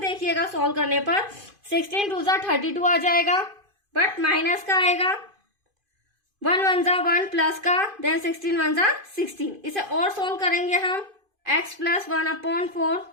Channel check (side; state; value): left; late; 2.5 ms